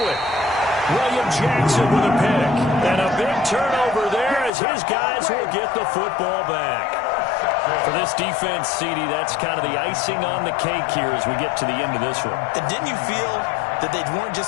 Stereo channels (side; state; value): right; drops out; at 4.5 s